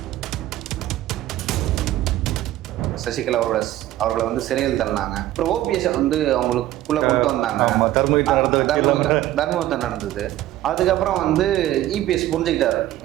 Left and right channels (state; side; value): quieter; left; 14.5 dB